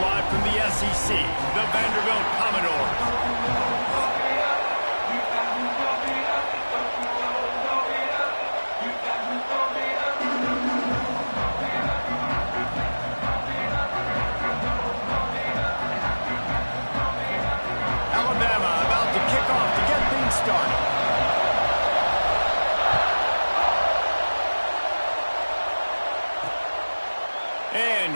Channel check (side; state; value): both; inverted; correlation -1.00